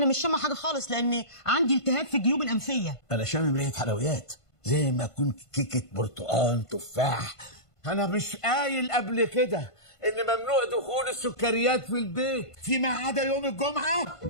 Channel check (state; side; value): late; right; 1.5 ms